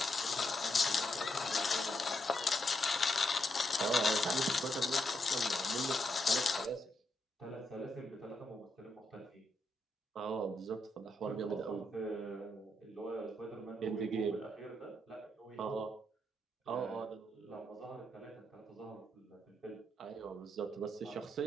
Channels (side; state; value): both; normal; correlation 0.80